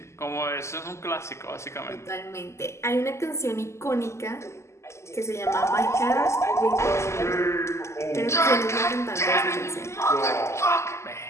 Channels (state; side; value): late; right; 0.13 ms